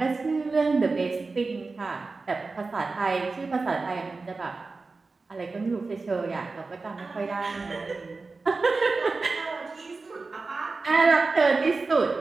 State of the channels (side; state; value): left; quieter; 3.9 dB